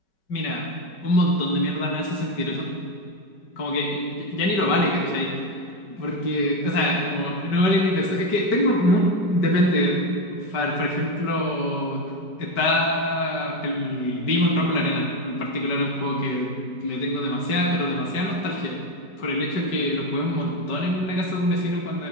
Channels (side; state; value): right; late; 5.2 ms